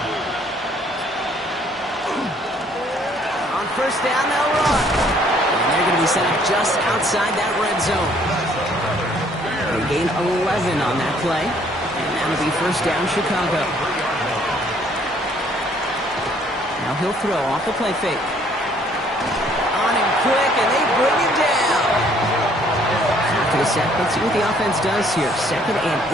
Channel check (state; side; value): normal; both; correlation 0.62